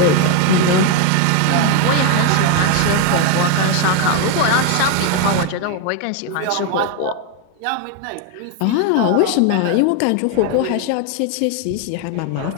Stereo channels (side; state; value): both; different; correlation 0.01